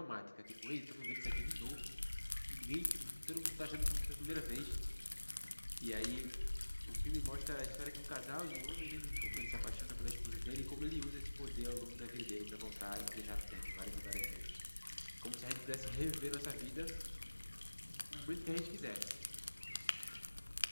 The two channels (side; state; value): both; inverted; correlation -1.00